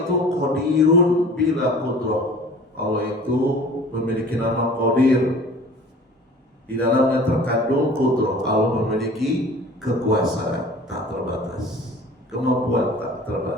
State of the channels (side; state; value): both; normal; correlation 0.44